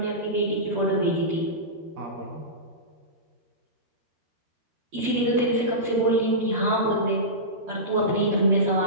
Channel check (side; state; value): left; late; 12 ms